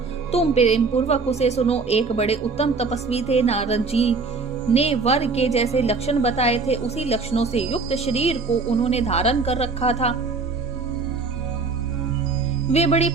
तुम प्रेम पूर्वक उसे सुनो। एक बड़े उत्तम तपस्वी थे। नारद जी ने वर के जैसे लक्षण बताए थे, उसी लक्षणों से युक्त शरीर को उन्होंने धारण कर रखा था। वे बड़ी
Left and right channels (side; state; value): left; quieter; 4.3 dB